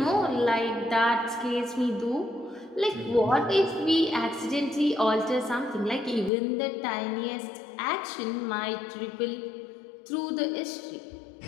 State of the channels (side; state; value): right; drops out; at 6.3 s